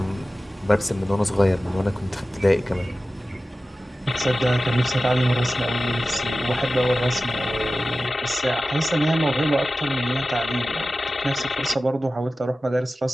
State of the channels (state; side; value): normal; both; correlation 0.95